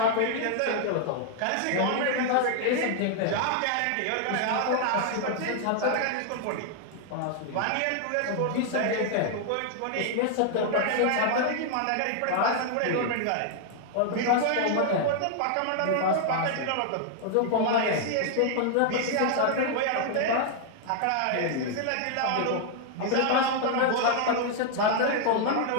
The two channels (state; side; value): different; both; correlation 0.00